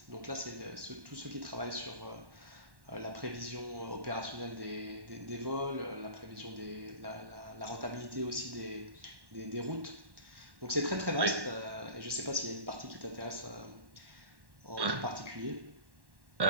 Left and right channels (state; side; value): late; left; 1.1 ms